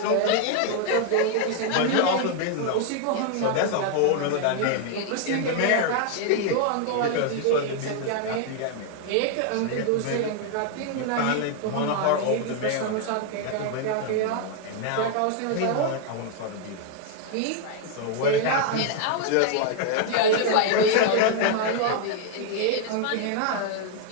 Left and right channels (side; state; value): both; different; correlation 0.00